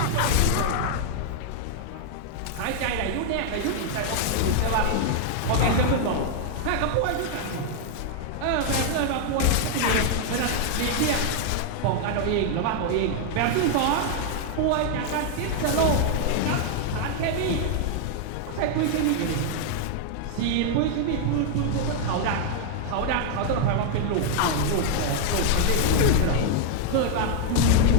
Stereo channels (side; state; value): both; different; correlation 0.00